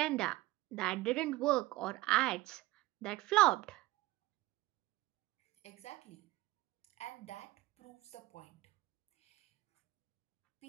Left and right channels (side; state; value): left; quieter; 18.6 dB